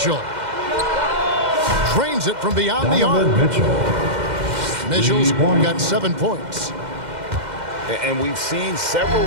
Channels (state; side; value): late; left; 2.1 ms